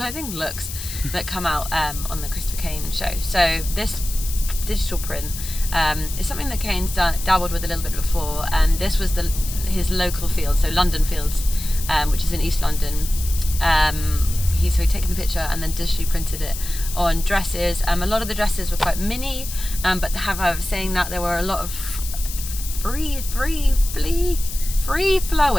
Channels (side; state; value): left; noise; hiss, 9 dB below the sound